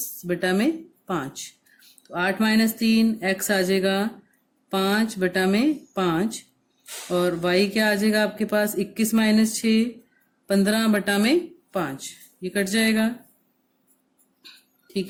बटा में 5। तो 8 -3 x आ जाएगा 5 बटा में 5 और y क्या आ जाएगा आपके पास, 21 -6 15 बटा में 5, ये कट जाएगा, ठीक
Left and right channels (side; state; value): both; identical; correlation 1.00